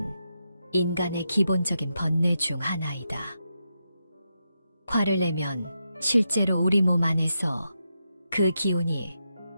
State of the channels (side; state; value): both; inverted; correlation -0.86